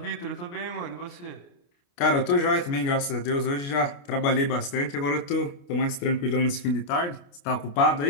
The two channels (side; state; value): right; late; 29 ms